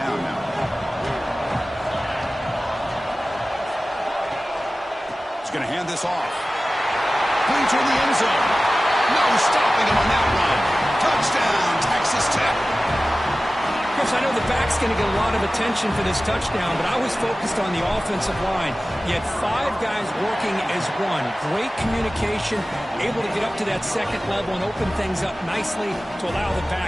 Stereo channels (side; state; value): both; normal; correlation 0.96